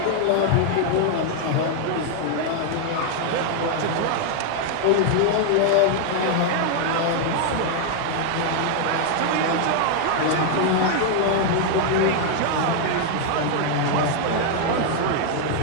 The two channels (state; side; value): different; both; correlation 0.00